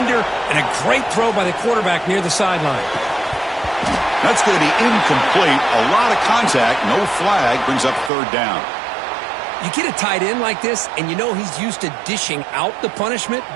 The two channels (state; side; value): drops out; left; at 8.1 s